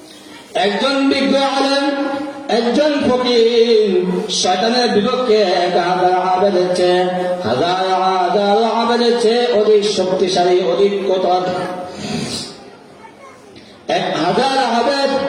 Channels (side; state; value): both; identical; correlation 1.00